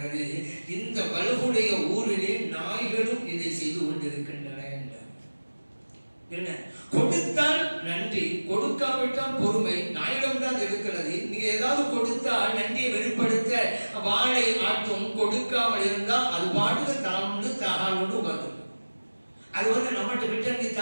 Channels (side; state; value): both; inverted; correlation -1.00